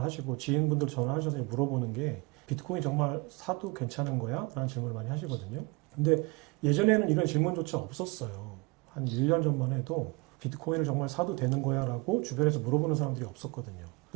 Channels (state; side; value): quieter; left; 27.3 dB